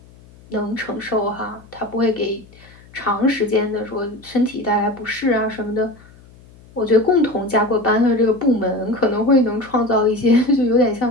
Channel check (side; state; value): left; noise; hum, 24 dB below the sound